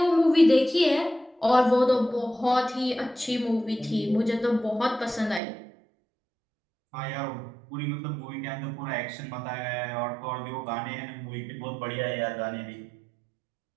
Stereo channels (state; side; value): drops out; left; at 5.4 s